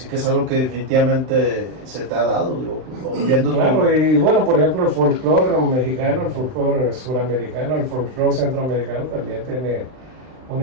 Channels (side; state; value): left; late; 39 ms